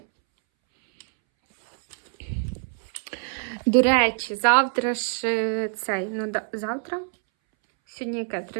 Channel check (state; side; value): silent; left; 61 dB below the other